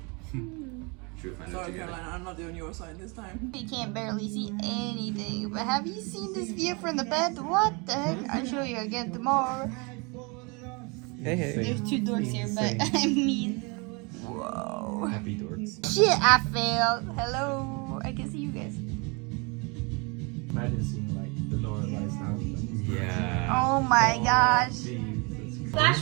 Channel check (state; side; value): quieter; left; 30.4 dB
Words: Should find Sorry, Caroline, I'm not on your side this time. You can't barely see anything, but have you seen this view from the bed? What the heck? I'll show you again tomorrow. Hey, hey. There's two dorks here, but I mean, whoa. Happy dorks. Shit, I failed. Hello. I can see you guys. Imagine seeing like the Norway lights now. Yeah. Oh my gosh. Jesus.